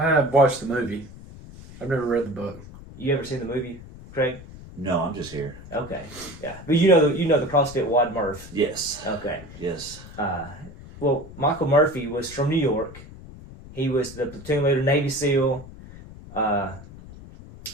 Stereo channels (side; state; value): left; noise; rumble, 16 dB below the sound